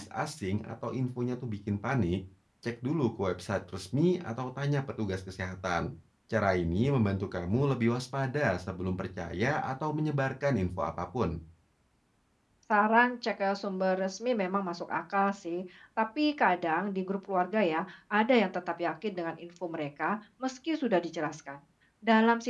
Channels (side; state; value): both; identical; correlation 1.00